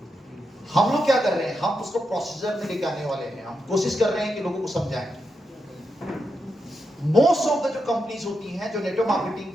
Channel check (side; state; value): both; normal; correlation 0.85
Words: हम लोग क्या कर रहे हैं, हम उसको प्रोसीजर में लेके आने वाले हैं। हम कोशिश कर रहे हैं कि लोगों को समझाएं। मोस्ट ऑफ द जो कंपनीज होती हैं, जो नेटवर्क मार्केटिंग